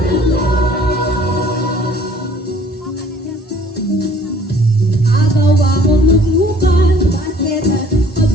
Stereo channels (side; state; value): both; normal; correlation 0.55